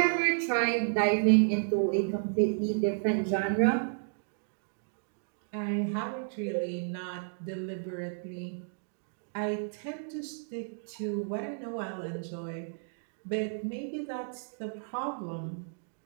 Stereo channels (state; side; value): silent; left; digital silence